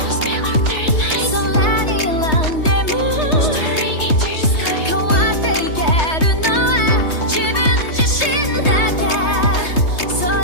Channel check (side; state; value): right; late; 3.2 ms